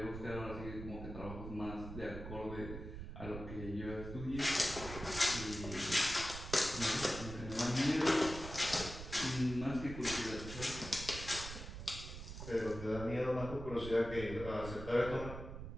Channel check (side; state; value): right; noise; rumble, 9 dB below the sound